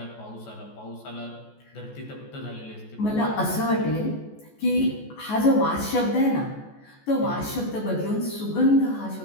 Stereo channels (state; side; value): late; right; 14 ms